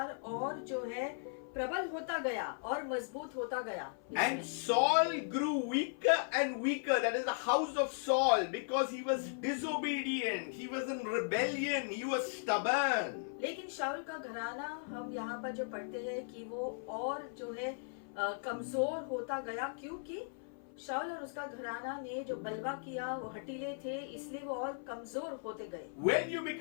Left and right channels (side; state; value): right; silent; 53 dB below the other